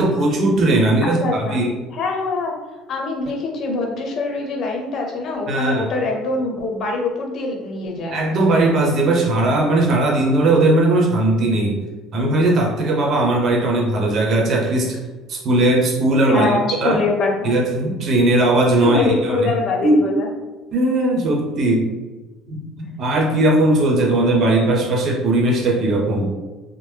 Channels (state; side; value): normal; both; correlation 0.47